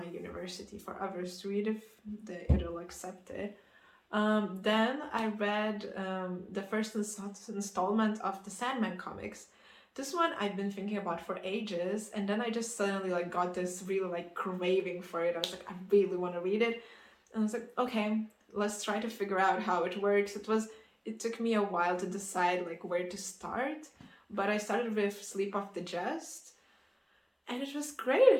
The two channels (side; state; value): both; identical; correlation 1.00